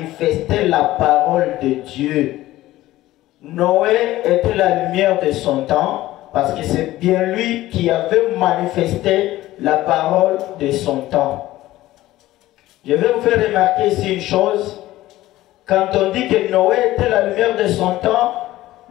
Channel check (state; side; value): quieter; right; 16.0 dB